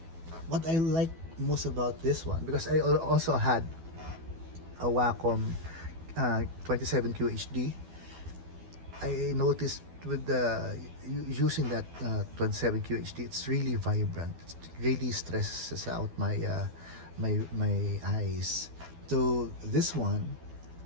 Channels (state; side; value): late; left; 12 ms